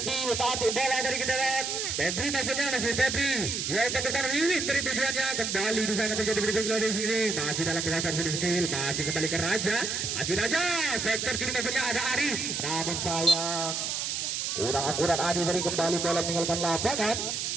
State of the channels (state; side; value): noise; right; hiss, 1 dB below the sound